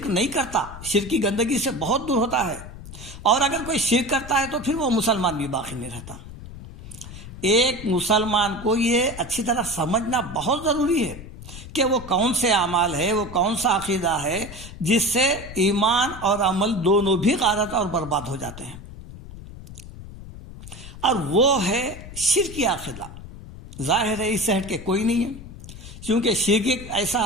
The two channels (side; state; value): left; noise; rumble, 14 dB below the sound